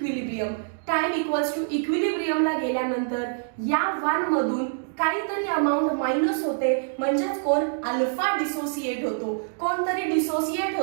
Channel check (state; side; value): silent; left; digital silence